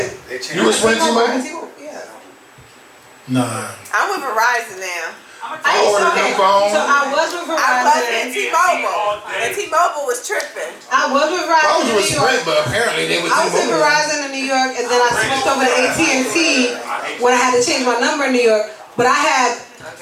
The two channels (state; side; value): identical; both; correlation 1.00